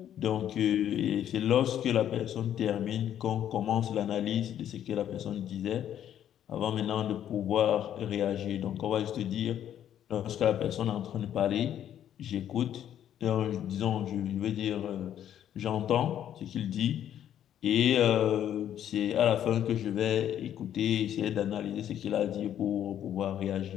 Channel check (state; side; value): quieter; right; 10.5 dB